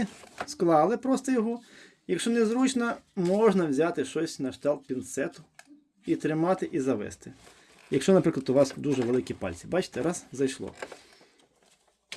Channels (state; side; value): identical; both; correlation 1.00